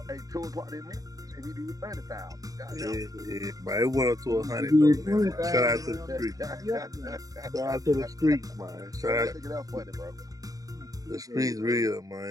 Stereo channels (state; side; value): late; left; 0.17 ms